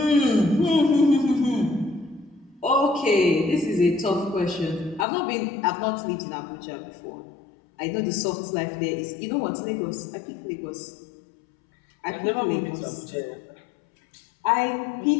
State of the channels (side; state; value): right; drops out; at 5.1 s